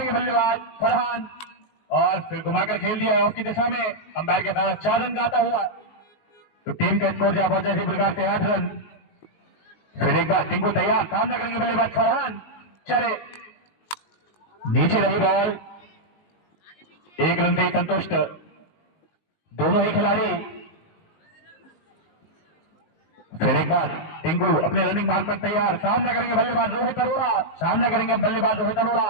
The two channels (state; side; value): late; right; 19 ms